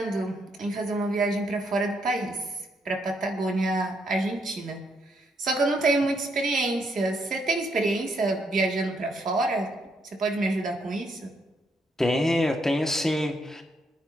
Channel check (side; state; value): both; normal; correlation 0.76